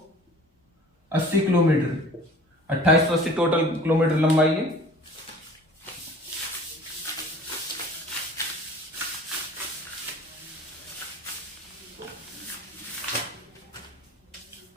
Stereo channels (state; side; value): normal; both; correlation 0.45